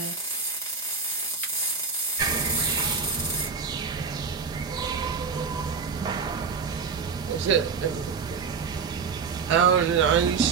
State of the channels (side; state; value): left; quieter; 5.5 dB